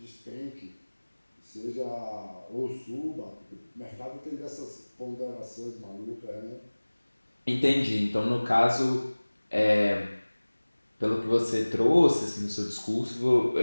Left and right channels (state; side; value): inverted; both; correlation -1.00